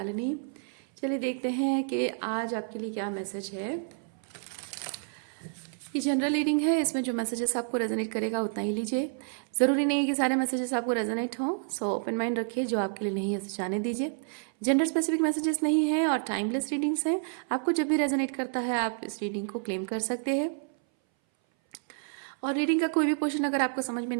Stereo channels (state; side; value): silent; left; 58 dB below the other